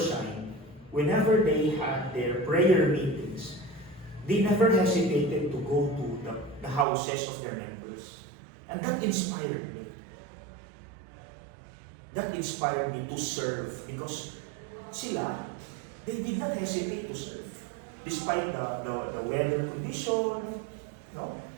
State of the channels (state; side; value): drops out; left; at 6.9 s